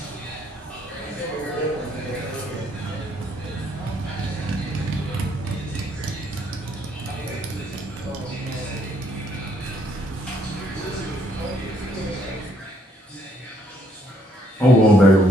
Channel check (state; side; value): normal; both; correlation 0.68